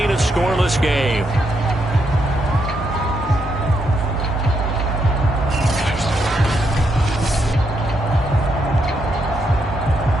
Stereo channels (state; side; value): normal; both; correlation 0.79